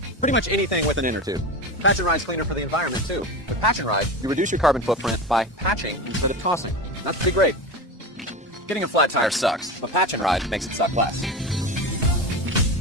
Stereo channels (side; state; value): both; normal; correlation 0.25